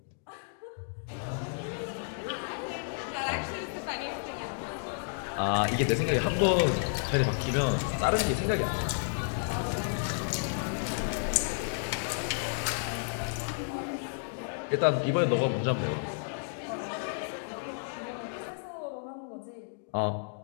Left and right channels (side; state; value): right; silent; digital silence